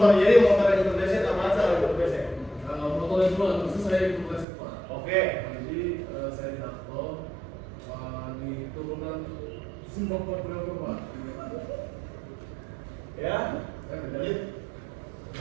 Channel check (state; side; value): drops out; left; at 4.5 s